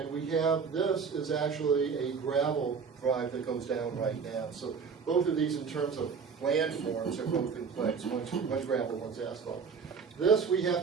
we have, this is actually a gravel drive that goes down right now. So both of these in terms of land forms are both in place, one's gravel, one's asphalt. This, we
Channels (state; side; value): quieter; left; 5.8 dB